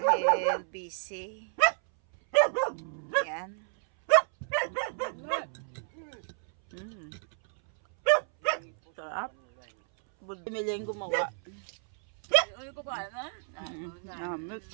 busy. Yan. Sarap. Budbod yung gumawa. Ano ko ba na? Namit.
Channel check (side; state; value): left; silent; 57 dB below the other